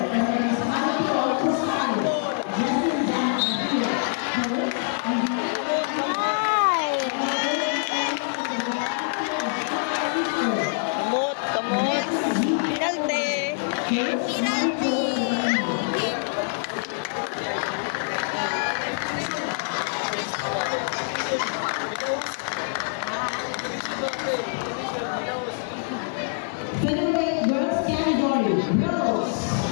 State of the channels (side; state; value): right; silent; digital silence